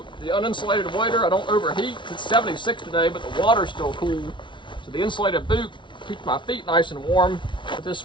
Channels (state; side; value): late; right; 0.24 ms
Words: the uninsulated wader. I don't overheat. It's 76 today, but the water's still cool. So the insulated boot keeps my feet nice and warm. But this